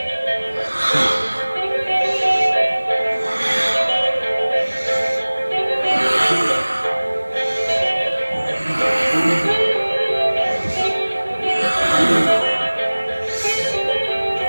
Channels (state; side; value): inverted; both; correlation -1.00